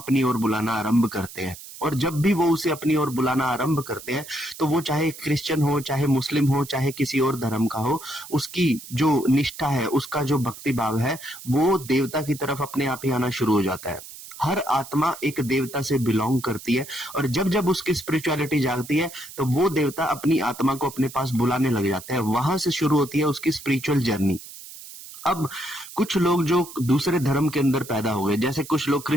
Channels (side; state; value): right; noise; hiss, 15 dB below the sound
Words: ओर बुलाना आरंभ करते हैं, और जब भी वो उसे अपनी ओर बुलाना आरंभ करते हैं तो वो चाहे क्रिश्चियन हो, चाहे मुस्लिम हो, चाहे किसी और धर्म का हो, उसकी जो निष्ठा है, उसका जो भक्ति भाव है, वो देवता की तरफ अपने आप ही आना शुरू हो जाता है। हर आत्मा एक देवता से बिलोंग करती है, और जब जब उसकी स्पिरिचुअलिटी जागती है तो वो देवता अपनी आत्मा को अपने पास बुलाने लग जाता है। वहां से शुरू होती है उसकी स्पिरिचुअल जर्नी। अब कुछ लोग जो दूसरे धर्म के अंदर पैदा हो गए, जैसे कुछ लोग